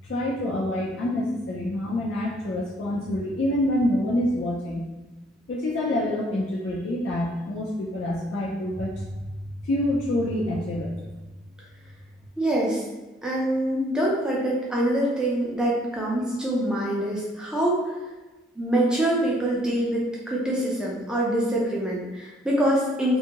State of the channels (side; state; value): both; normal; correlation 0.63